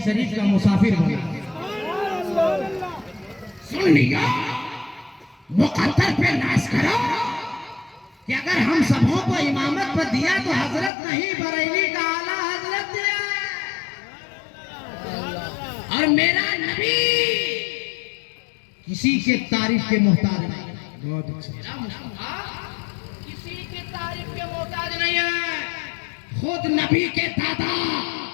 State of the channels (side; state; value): right; drops out; at 10.9 s